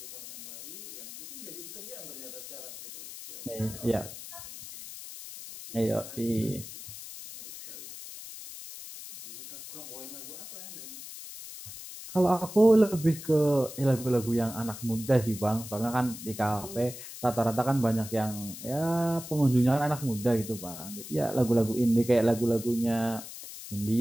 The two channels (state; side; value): noise; left; hiss, 12 dB below the sound